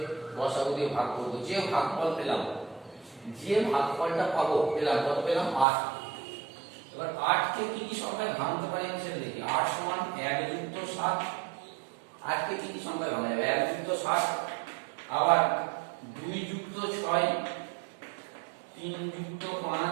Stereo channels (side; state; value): left; drops out; at 5.7 s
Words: গসাগু দিয়ে ভাগ করব। যে ভাগফল পেলাম, যে ভাগফলটা পাবো পেলাম কত পেলাম 8। এবার 8 কে কি কি সংখ্যায় ভাঙতে পারি আমি সেটা দেখি। 8 সমান 1 যুক্ত 7। 8 কে কি কি সংখ্যায় ভাঙা যাবে? 1 যুক্ত 7, আবার 2 যুক্ত 6, 3 যুক্ত